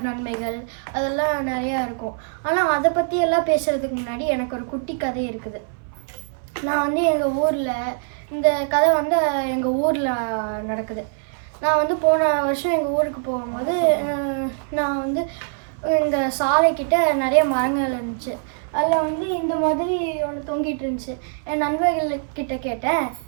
நன்மைகள் அதெல்லாம் நிறையா இருக்கும். ஆனால் அதை பற்றி எல்லாம் பேசுகிறதுக்கு முன்னாடி எனக்கு ஒரு குட்டி கதை இருக்குது. நான் எங்கள் ஊரில் இந்த கதை எங்கள் ஊரில் நடக்குது. நான் போன வருஷம் எங்கள் ஊருக்கு போகும்போது நான் எங்கள் சாலைக்கிட்ட நிறைய மரங்கள் இருந்துச்சு. அதில் இந்த மாதிரி ஒன்று தொங்கிட்டு இருந்துச்சு. என் நண்பர்கள்கிட்ட கேட்டேன்,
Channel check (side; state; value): left; silent; 61 dB below the other